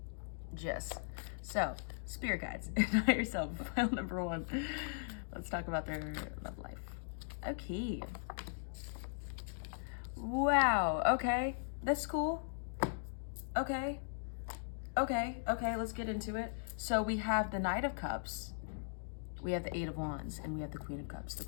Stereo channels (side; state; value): right; silent; digital silence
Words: Yes. So, spirit guides and higher self, pile number 1. Let's talk about their love life. Okay. Wow. Okay. That's cool. Okay. Okay. Okay. Let's get into it. So we have the Knight of Cups. We have the 8 of Wands, and we have the Queen of Cups. The